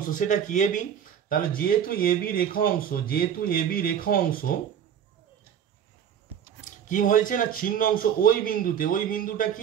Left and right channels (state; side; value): quieter; left; 8.8 dB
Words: সেটা কি এবি। তাহলে যেহেতু এবি রেখা অংশ কি হয়েছে না ছিন্ন অংশ ওই বিন্দুতে, ওই বিন্দুটা